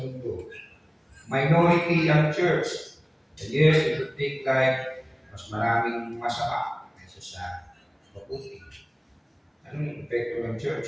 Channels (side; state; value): both; identical; correlation 1.00